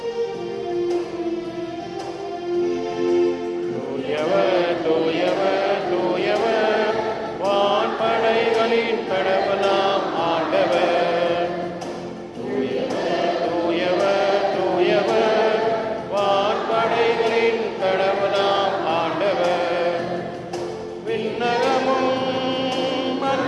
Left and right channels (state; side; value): identical; both; correlation 1.00